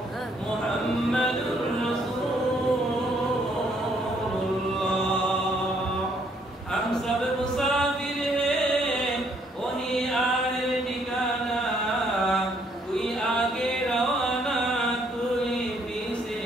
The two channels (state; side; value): normal; both; correlation 0.68